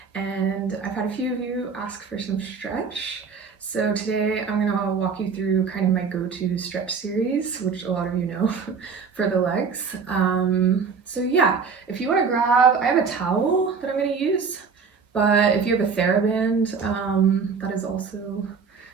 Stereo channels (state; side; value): quieter; left; 5.6 dB